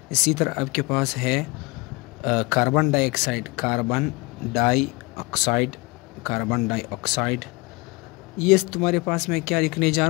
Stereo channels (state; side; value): quieter; right; 25.5 dB